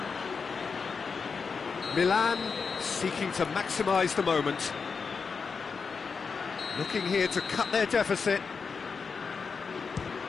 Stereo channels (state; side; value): quieter; right; 5.3 dB